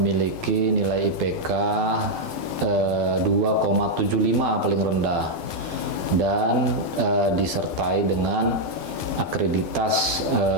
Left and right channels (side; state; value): left; late; 12 ms